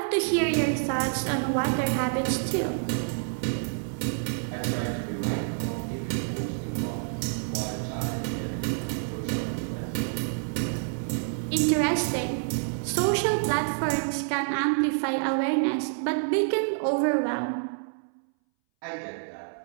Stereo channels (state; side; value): silent; left; 59 dB below the other